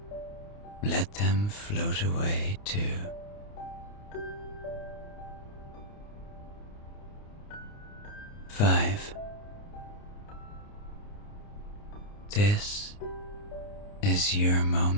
let them float away too. Five. This is your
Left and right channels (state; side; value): late; right; 29 ms